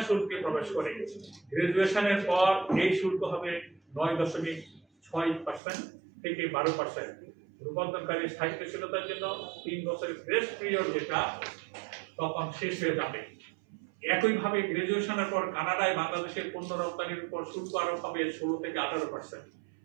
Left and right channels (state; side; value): drops out; left; at 5.6 s